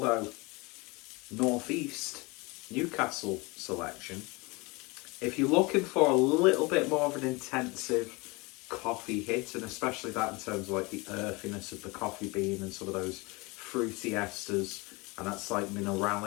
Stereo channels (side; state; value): right; quieter; 25.8 dB